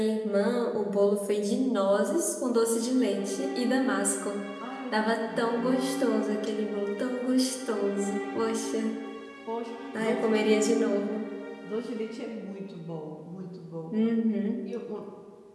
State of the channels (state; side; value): identical; both; correlation 1.00